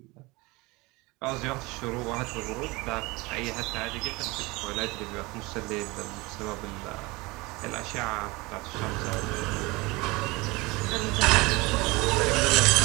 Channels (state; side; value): quieter; left; 23.5 dB